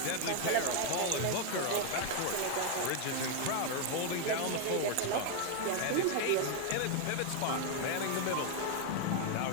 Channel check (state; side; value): different; both; correlation 0.00